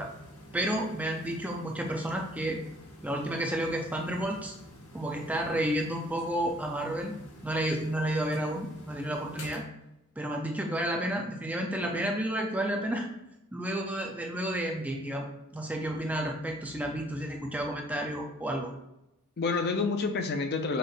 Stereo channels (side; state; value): both; normal; correlation 0.60